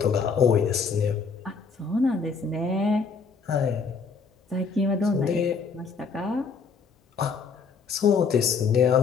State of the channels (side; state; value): right; quieter; 5.3 dB